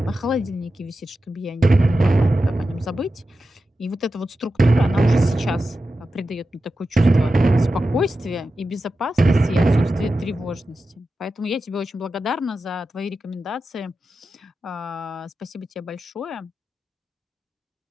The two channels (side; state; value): both; normal; correlation 0.91